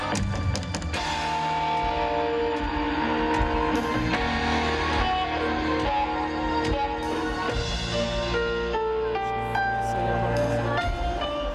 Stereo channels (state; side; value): identical; both; correlation 1.00